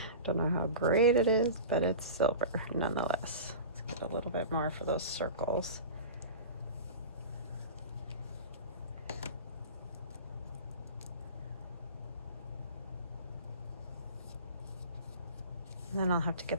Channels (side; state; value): both; inverted; correlation -0.33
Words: know how great it is, but it's silver nonetheless. Let's get a little bit more for those circles. And then I'll have to